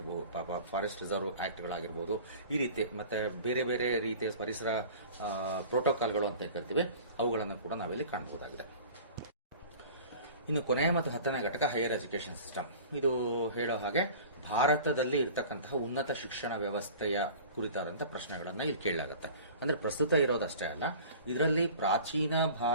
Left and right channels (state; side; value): inverted; both; correlation -0.42